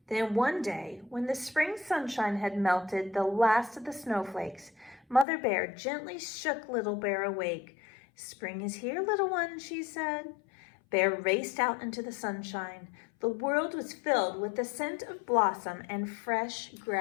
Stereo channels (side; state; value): right; drops out; at 5.2 s